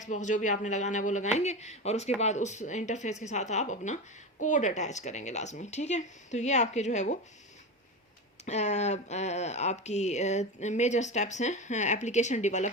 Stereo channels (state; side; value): normal; both; correlation 0.22